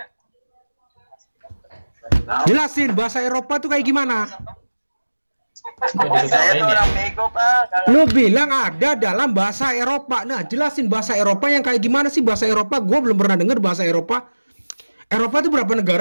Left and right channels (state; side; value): inverted; both; correlation -1.00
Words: Jelasin bahasa Eropa tuh kayak gimana? Saya tuh orang bego, Pak. Lu bilang ada dalam bahasa Eropa. Nah, jelasin bahasa Eropa yang kayak gimana sih bahasa Eropa? Gua belum pernah denger bahasa Eropa. Eropa itu berapa